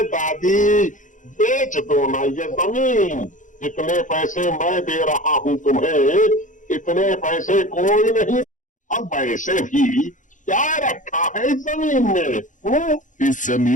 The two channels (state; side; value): late; right; 0.37 ms